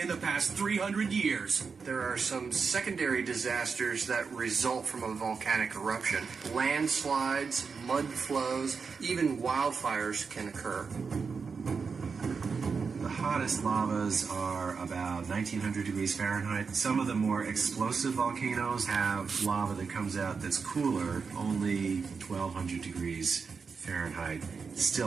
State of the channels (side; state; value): left; quieter; 5.3 dB